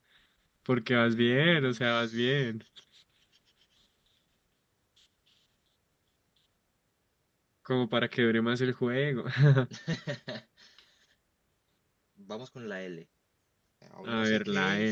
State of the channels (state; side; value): identical; both; correlation 1.00